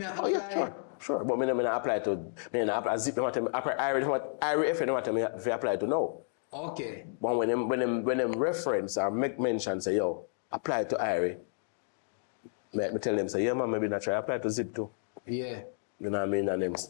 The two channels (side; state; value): right; silent; digital silence